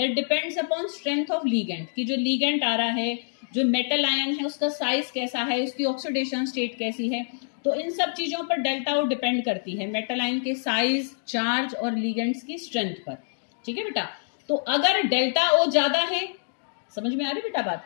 depends upon strength of ligand, कि जो लीगेंट आ रहा है, जो मेटल आयन है, उसका साइज कैसा है, उसकी ऑक्सीडेशन स्टेट कैसी है, तो इन सब चीजों पर डेल्टा ओ डिपेंड करती है, मेटल आयन के साइज, चार्ज और लीगेंट्स की स्ट्रेंथ पर। ठीक है बेटा, तो अगर डेल्टा ओ ज्यादा है, समझ में आ रही बेटा बात?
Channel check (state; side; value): silent; right; digital silence